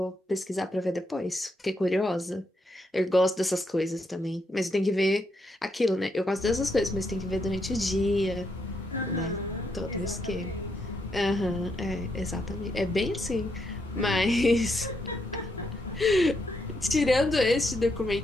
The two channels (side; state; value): both; normal; correlation 0.79